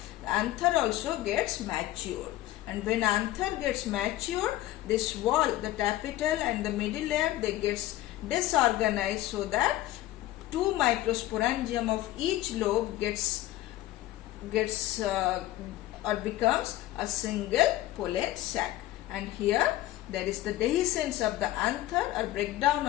the anther also gets matured. And when anther gets matured, this wall, the tapetal and the middle layer, they gets disorganized so that 2 microsporangium of each lobe gets or becomes a single pollen sac. And here there is the dehiscence of the anther or breakdown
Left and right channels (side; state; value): right; quieter; 15.4 dB